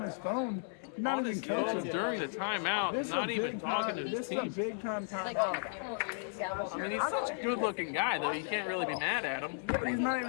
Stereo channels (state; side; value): silent; right; 55 dB below the other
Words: his phone, not on even his phone coaching. during the timeout, This is not a even big talking time. to This his is a team. big time time. I mean, he's such a good-looking guy, though. You can't really be mad at him. He's not